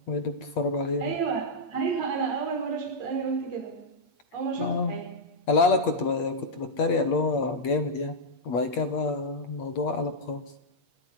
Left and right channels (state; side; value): late; right; 8.5 ms